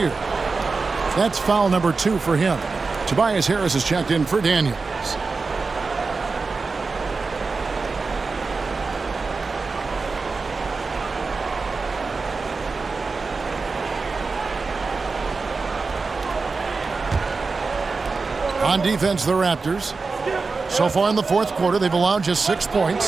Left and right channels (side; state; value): left; quieter; 4.3 dB